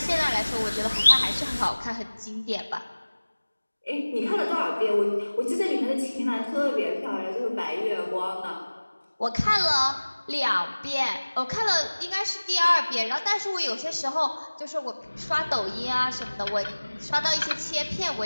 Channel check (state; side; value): inverted; both; correlation -1.00